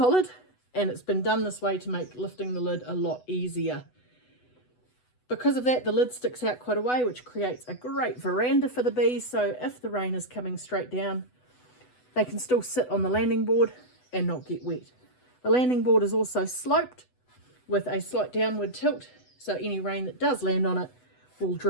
and it's been done this way to make lifting the lid a lot easier. Because of that, the lid sticks out quite a way, which creates a great veranda for the bees. So if the rain is coming straight down, they can still sit on the landing board and not get wet. The landing board is also sloped with a slight downward tilt, so any rain that does land on it will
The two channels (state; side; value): late; right; 8.0 ms